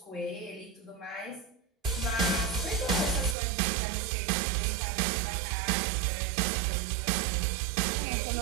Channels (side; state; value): left; drops out; at 3.4 s